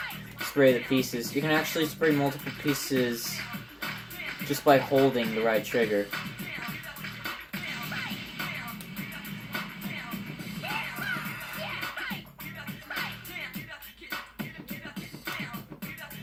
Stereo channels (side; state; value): both; identical; correlation 1.00